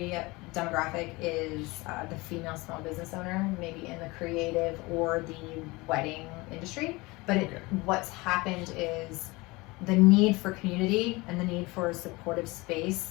demographic is the female small business owner, maybe in the creative or the wedding industry. But what's happened is the need for community and the need for a supportive space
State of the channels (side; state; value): right; quieter; 23.3 dB